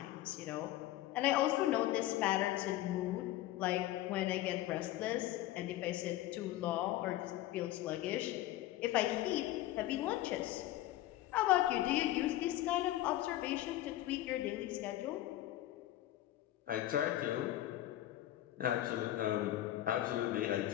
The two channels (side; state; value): right; quieter; 14.6 dB